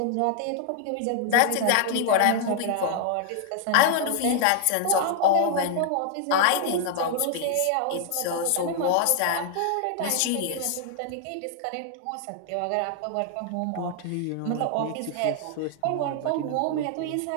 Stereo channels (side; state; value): both; different; correlation 0.00